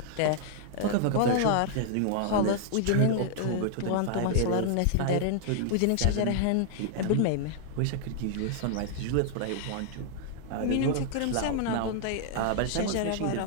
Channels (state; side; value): different; both; correlation 0.00